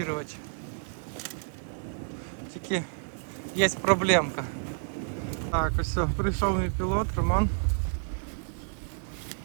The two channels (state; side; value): silent; left; digital silence